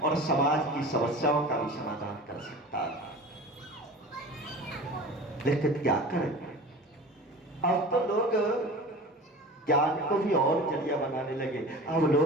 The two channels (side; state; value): both; normal; correlation 0.36